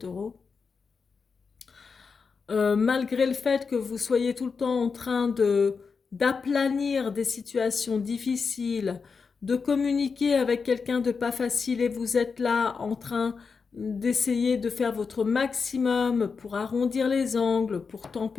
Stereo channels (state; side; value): quieter; right; 5.2 dB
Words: Malgré le fait que vous soyez tout le temps en train d'aplanir des situations difficiles, de communiquer avec quelqu'un de pas facile et vous êtes là en train d'essayer de faire votre maximum pour arrondir les angles, pour